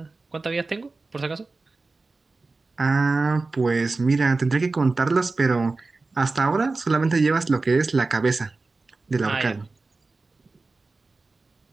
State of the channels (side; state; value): left; quieter; 3.6 dB